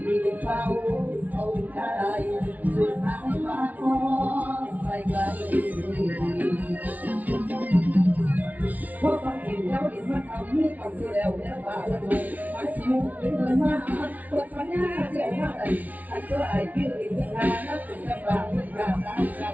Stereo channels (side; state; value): left; late; 0.074 ms